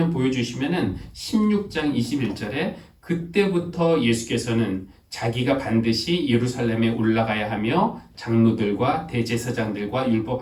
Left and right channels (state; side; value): identical; both; correlation 1.00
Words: 보여주시면은 16장 21절에 그때부터 예수께서는 자기가 반드시 예루살렘에 올라가야 하며 장로들과 대제사장들과